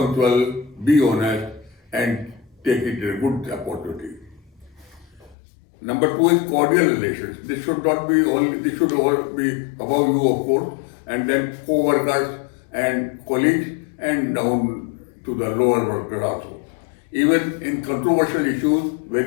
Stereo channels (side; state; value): right; drops out; at 5.4 s